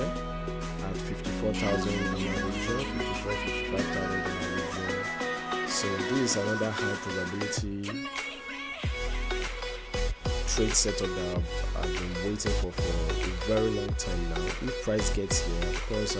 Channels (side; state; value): both; identical; correlation 1.00